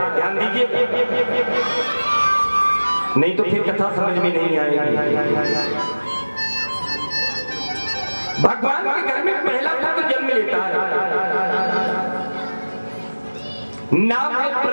ध्यान दीजिए, नहीं तो फिर कथा समझ में नहीं आएगी। भगवान के घर में पहला पुत्र जन्म लेता है, नाम है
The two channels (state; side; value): inverted; both; correlation -1.00